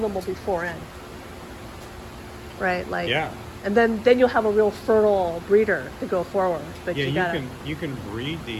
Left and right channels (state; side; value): identical; both; correlation 1.00